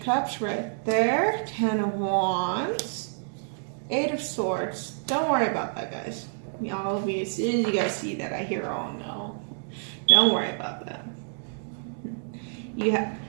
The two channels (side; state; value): left; silent; digital silence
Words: right there, 10 of Wands, 8 of Swords. Don't worry about that, guys. All of you, as soon as you guys see that, I hear, oh no. Don't worry about that. You have